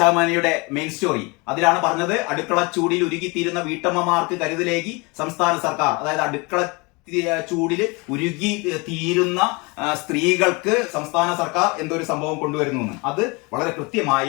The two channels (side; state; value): right; quieter; 27.8 dB